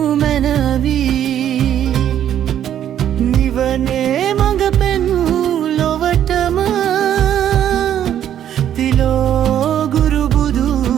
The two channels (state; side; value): quieter; left; 10.4 dB